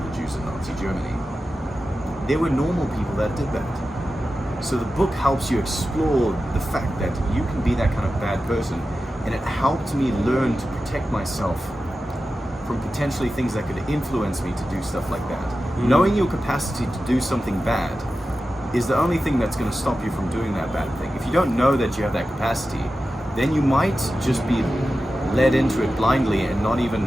Jews in Nazi Germany. There were normal people that did that. So the book helps you explore the fact that you can be that kind of bad person, and it helped me learn to protect myself from potentially things that could influence me to do stuff like that. Knowing your capacity to do something bad is the only thing that's going to stop you from doing that bad thing. If you don't know that you have that capacity, then you might just be led into it blindly and not even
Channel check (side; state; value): both; normal; correlation 0.93